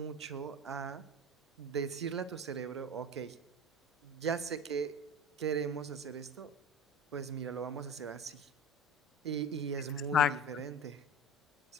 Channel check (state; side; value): normal; both; correlation 0.32